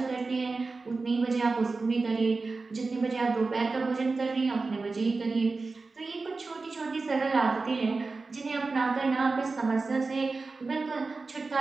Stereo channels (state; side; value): quieter; left; 3.9 dB